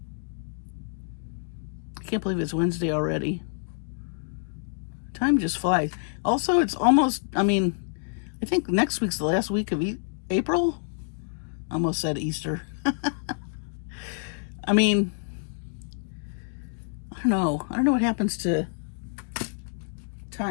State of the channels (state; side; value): silent; right; digital silence